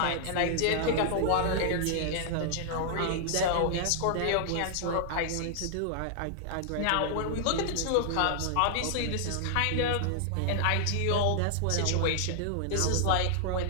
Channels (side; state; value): both; different; correlation -0.01